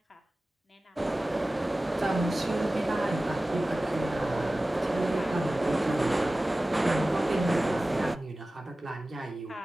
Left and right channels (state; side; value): normal; both; correlation 0.97